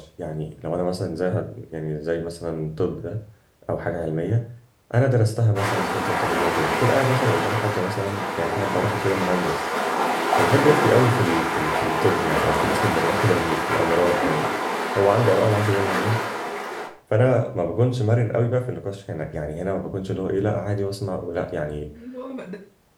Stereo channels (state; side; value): identical; both; correlation 1.00